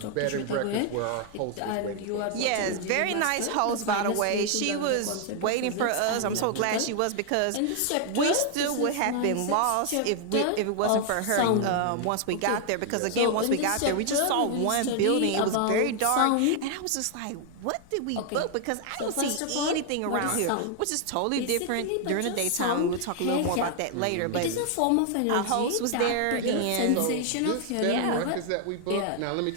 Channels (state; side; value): different; both; correlation 0.00